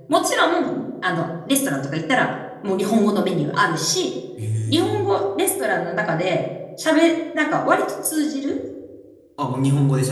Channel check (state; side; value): identical; both; correlation 1.00